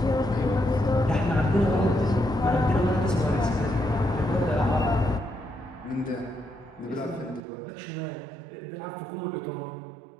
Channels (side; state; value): left; drops out; at 7.4 s